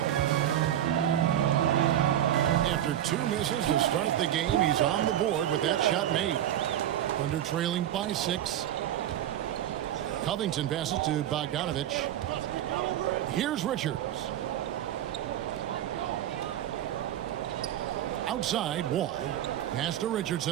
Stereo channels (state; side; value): quieter; left; 11.6 dB